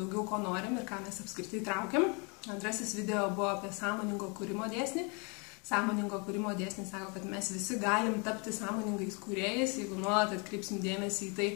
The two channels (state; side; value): quieter; right; 33.0 dB